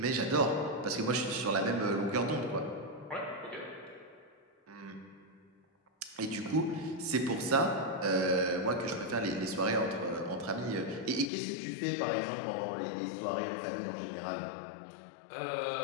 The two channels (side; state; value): right; drops out; at 11.3 s